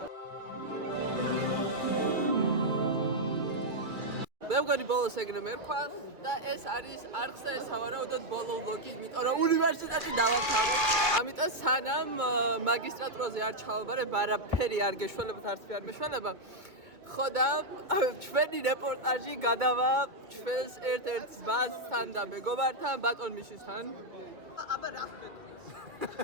მე მგონი ბოლოს ეგრე მერქვა და ეს არის არხზე სავარაუდოდ ბოლო ვლოგი, იმიტომ რომ უნივერსიტეტი დავამთავრე. ამიტომ სანამ მაგისტრატურაზე არ ჩავაბარებ, არაფერი არ გეშველებათ, არც არ მეშველება. ხო და ჩვენი რეპორტაჟი გადავა ჩვენს ერთ-ერთ ძმასთან და მეგობართან, ბატონ მიშისთან. აბა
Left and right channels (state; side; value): late; left; 2.4 ms